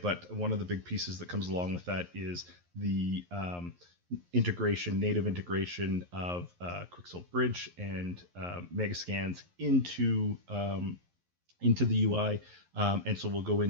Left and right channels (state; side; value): late; left; 11 ms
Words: one of the big pieces that comes along with that is the native integration of Quixel Bridge and Megascans into the UI, and so we'll go